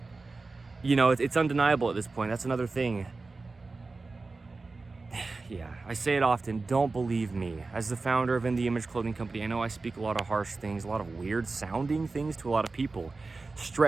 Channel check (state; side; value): quieter; left; 3.8 dB